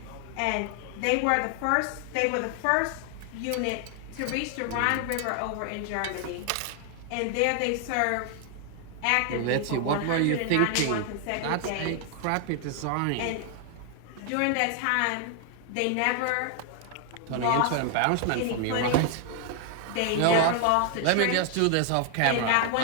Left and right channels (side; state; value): both; different; correlation 0.00